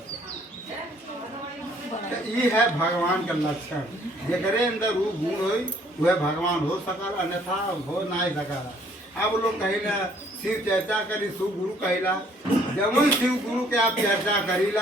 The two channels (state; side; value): normal; both; correlation 0.61